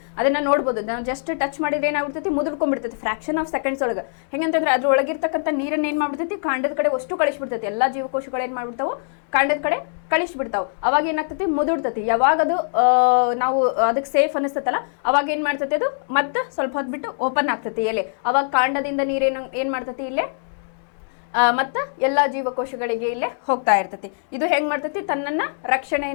ಅದನ್ನ ನೋಡ್ಬೋದು. ನಾವು ಜಸ್ಟ್ ಟಚ್ ಮಾಡಿದ್ರೆ ಏನಾಗ್ಬಿಡ್ತೈತಿ, ಮುದುರ್ಕೊಂಡ್ಬಿಡ್ತೈತಿ ಫ್ರಾಕ್ಷನ್ ಆಫ್ ಸೆಕೆಂಡ್ಸ್ ಒಳಗೆ. ಹೆಂಗಂತಂದ್ರೆ ಅದ್ರ ಒಳಗಿರ್ತಕ್ಕಂಥ ನೀರನ್ನ ಏನು ಮಾಡ್ಬಿಡ್ತೈತಿ, ಕಾಂಡದ ಕಡೆ ಅಷ್ಟು ಕಳಿಸ್ಬಿಡ್ತೈತಿ. ಎಲ್ಲ ಜೀವಕೋಶಗಳು ಏನು ಮಾಡ್ಬಿಡ್ತಾವೆ, ಕಾಂಡದ ಕಡೆ ಕಳಿಸ್ಬಿಡ್ತಾವೆ. ಅವಾಗ ಏನಾಗ್ತೈತಿ, ಮುದುಡ್ತೈತಿ. ಯಾವಾಗ ಅದು ನಾವು ಅದಕ್ಕೆ ಸೇಫ್ ಅನಿಸ್ತೈತಲ್ಲ, ಅವಾಗ ಏನು ಮಾಡ್ತೈತಿ, ಅದು ಮತ್ತೆ ಸ್ವಲ್ಪ ಹೊತ್ತು ಬಿಟ್ಟು ಓಪನ್ ಆಗ್ತೈತಿ ಎಲೆ. ಅವಾಗ ಕಾಂಡದಿಂದ ನೀರೇನು ಏನು ಮಾಡ್ತೈತಿ, ಇಲ್ಲೇ ಮತ್ತು ಎಲ್ಲ ಜೀವಕೋಶಗಳಿಗೆ ಇಲ್ಲೇ ಹೋಗ್ತಾ ಇರ್ತೈತಿ. ಇದು ಹೆಂಗ್ ಮಾಡ್ತೈತಿ, ತನ್ನನ್ನ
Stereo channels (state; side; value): silent; right; digital silence